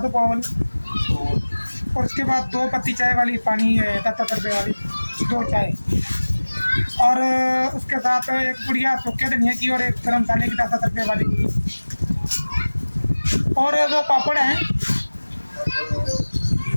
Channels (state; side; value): inverted; both; correlation -1.00